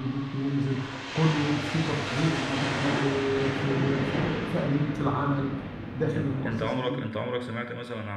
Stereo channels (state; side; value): identical; both; correlation 1.00